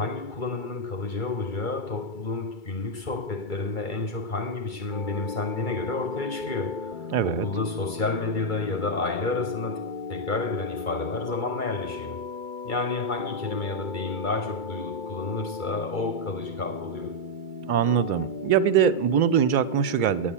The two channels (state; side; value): late; right; 2.3 ms